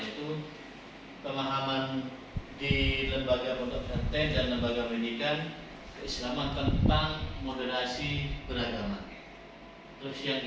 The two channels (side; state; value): both; identical; correlation 1.00